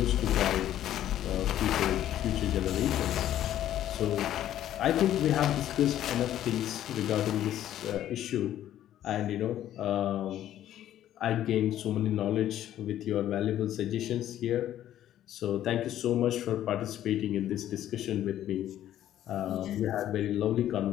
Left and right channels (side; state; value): right; quieter; 12.1 dB